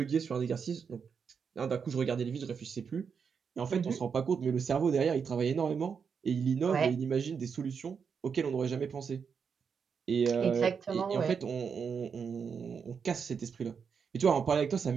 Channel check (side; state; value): left; quieter; 6.3 dB